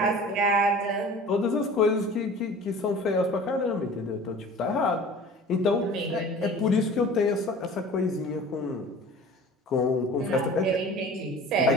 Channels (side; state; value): both; normal; correlation 0.42